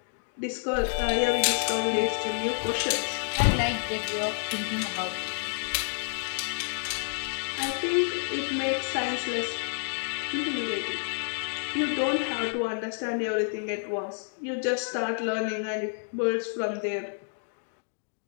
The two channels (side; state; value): right; silent; digital silence